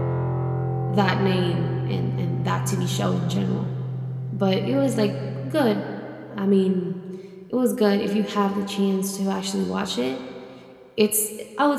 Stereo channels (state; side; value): identical; both; correlation 1.00